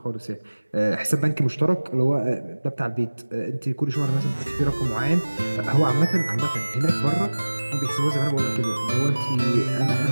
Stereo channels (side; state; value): both; inverted; correlation -1.00